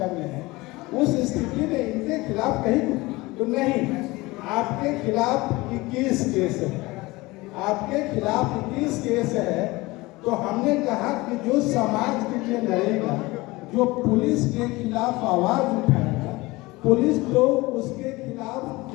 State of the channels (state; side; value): quieter; right; 21.5 dB